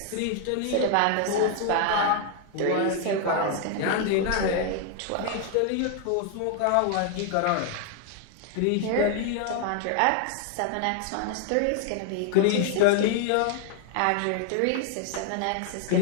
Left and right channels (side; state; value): both; different; correlation 0.00